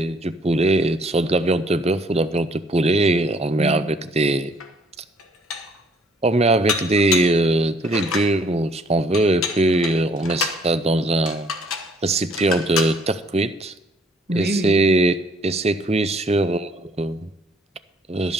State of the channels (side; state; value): both; normal; correlation 0.61